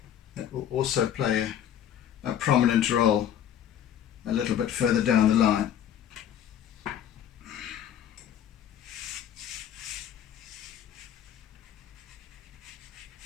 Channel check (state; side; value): quieter; right; 10.0 dB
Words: That will also play a prominent role a little bit further down the line.